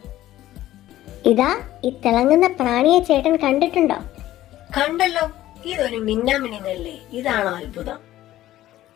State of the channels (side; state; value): right; quieter; 14.3 dB